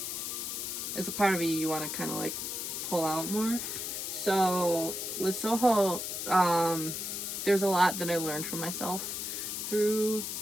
it's a part of you want to kind of like pull out more. So with Soho, there's a lot that I learned from myself through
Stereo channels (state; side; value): noise; left; hiss, 4 dB below the sound